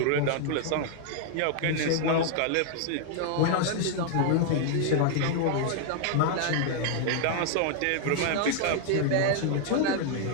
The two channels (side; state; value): both; different; correlation 0.00